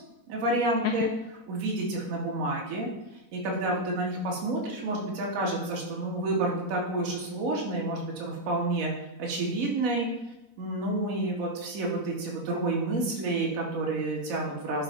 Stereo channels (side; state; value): left; late; 4.0 ms